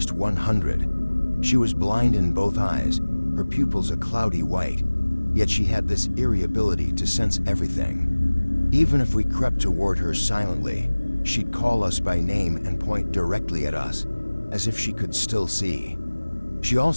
100. She was blind in both eyes, her pupils a cloudy white, yet she had this eerie ability to sense everything. Even if we crept toward her silently, she'd call us by name and point directly at us, as if she could still see. She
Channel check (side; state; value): both; inverted; correlation -1.00